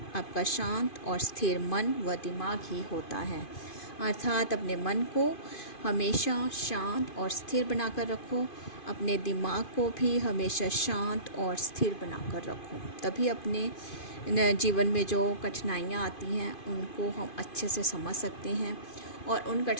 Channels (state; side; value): late; right; 2.5 ms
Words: आपका शांत और स्थिर मन व दिमाग ही होता है। अर्थात अपने मन को हमेशा शांत और स्थिर बनाकर रखो, अपने दिमाग को भी हमेशा शांत और स्थिर बनाकर रखो। तभी अपने जीवन में जो कठिनाइयाँ आती हैं उनको हम अच्छे से समझ सकते हैं और उन